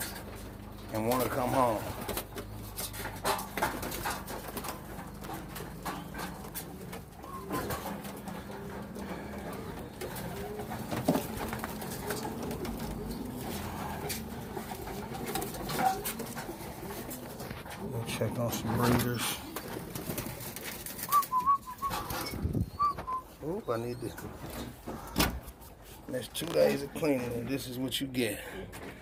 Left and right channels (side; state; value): both; identical; correlation 1.00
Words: and want to come home. We'll check on some breeders. Oop, I need to. There's 2 days of cleaning, and this is what you get.